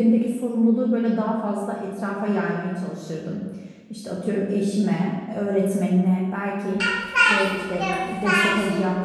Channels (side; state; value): both; identical; correlation 1.00